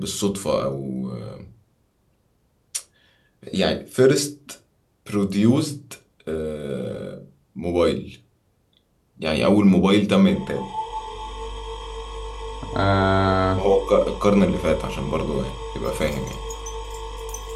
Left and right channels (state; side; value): identical; both; correlation 1.00